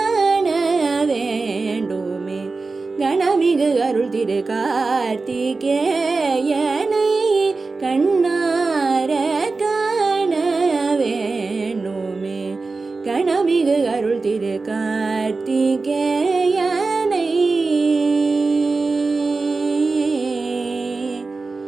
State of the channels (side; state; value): left; quieter; 3.9 dB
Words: வேண்டுமே கணமிகு அருள் திரு கார்த்திகேயனை கண்ணார காண வேண்டுமே கணமிகு அருள் திரு கார்த்திகேயனை